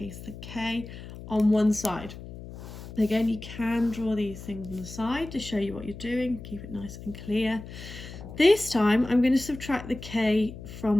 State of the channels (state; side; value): noise; left; hum, 13 dB below the sound